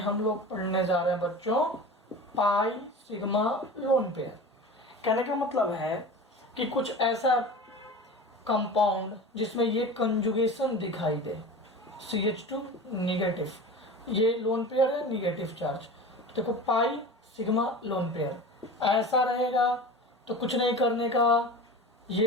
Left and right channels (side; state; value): both; normal; correlation 0.34